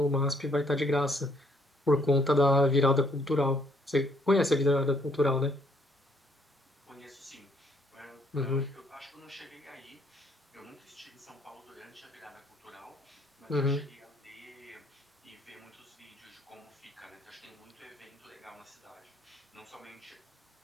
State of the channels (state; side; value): normal; both; correlation 0.68